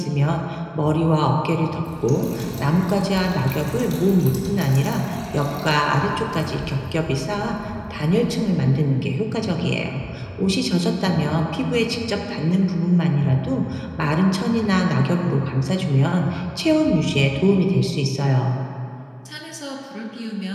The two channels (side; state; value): both; identical; correlation 1.00